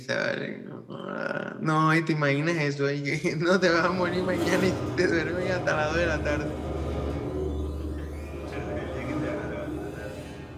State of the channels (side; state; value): both; identical; correlation 1.00